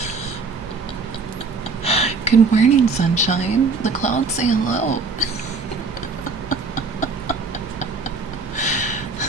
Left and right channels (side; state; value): left; quieter; 4.3 dB